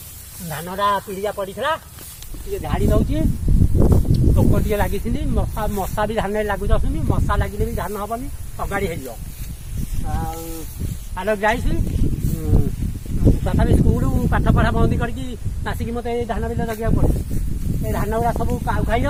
ଧାନଟା ପିଡ଼ିଆ ପଡ଼ିଥିଲା ଟିକେ ଝାଡ଼ି ଦଉଛି। ପୋକ ଟିକେ ଲାଗିଛନ୍ତି, ମଶା ବି ଧାନରେ ଲାଗୁ ଯାଉଛନ୍ତି। ମଶା ଲାଗିଲେ ବି ଧାନ ହବନି, ଅଗାଡ଼ି ହେଇଯିବ। ଆଉ ଆଲୋ ଯାଇଛି ତଥାପି ସ୍କୁଲ ପାଠ ପଢ଼ା ବନ୍ଦ କରିକି ଆସିକି ମୋତେ ଏଇ ଧାନ ବିଲ ଜଗିବାକୁ ପଡ଼ୁଛି। ଏ ଧାନ ଗୁଡ଼ା ସବୁ କାଉ ଖାଇ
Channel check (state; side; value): identical; both; correlation 1.00